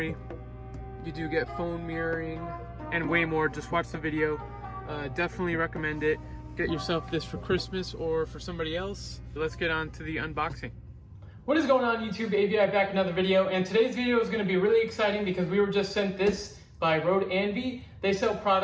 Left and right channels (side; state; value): both; identical; correlation 1.00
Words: you do get phone mirroring and way more. Just watch the video. Definitely recommend it. Get yourself this for Christmas or for somebody else. Let's get on to the unboxing. What is going on YouTube? AVI Back Another video, and today's video is going to be really exciting because we were just sent this by ROADANVI. They sell